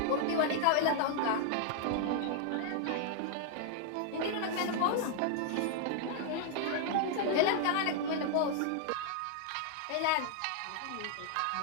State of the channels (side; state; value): both; different; correlation 0.00